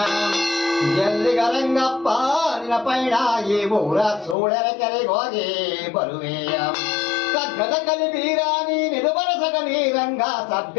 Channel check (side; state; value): right; drops out; at 4.4 s